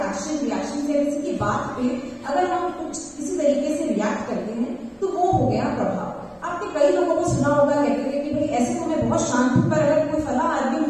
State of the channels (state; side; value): identical; both; correlation 1.00